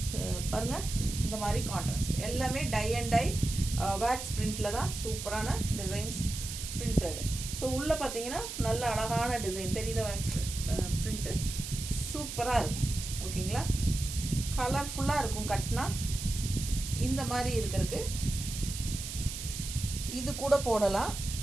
பாருங்கள். இந்த மாதிரி கான்ட்ராஸ்ட் எல்லாமே டை அண்ட் டை வேக்ஸ் பிரிண்டில் தான் சூப்பரான டிசைன்ஸ் பிரிண்டட். ஸோ உள்ளே பார்த்தீங்கன்னா நல்ல அழகான டிசைன் தெரியுதா, வேக்ஸ் பிரிண்ட்டு சூப்பராக இருக்கும். ஓகேங்களா, கலர்ஃபுல்லாக இருக்கும். கட்டினா இந்த மாதிரி இருக்கிறதுக்கு இது கூட போடலாம்,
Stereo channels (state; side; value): noise; right; hiss, 7 dB below the sound